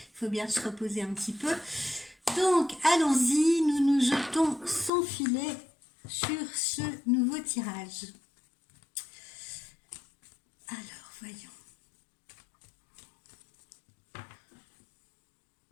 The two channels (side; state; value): right; drops out; at 4.9 s